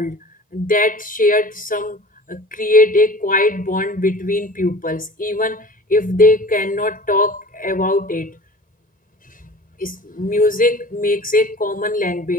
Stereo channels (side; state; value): both; normal; correlation 0.42